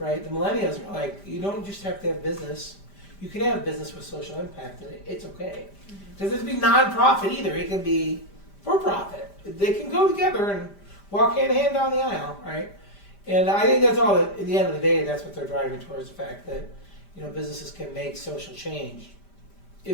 The millennials are like, you don't just have to have business. You can have business with social impact, and it's okay. It doesn't have to be non-profit either. It can be for-profit. They can go together and walk hand in hand down the aisle, right? And I think that's all. At the end of the day, that's what they're driving towards, the fact that, you know, businesses can make social change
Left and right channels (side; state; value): right; late; 5.0 ms